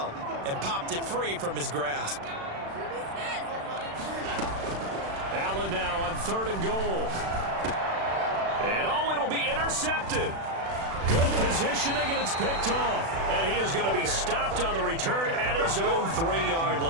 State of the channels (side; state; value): left; late; 36 ms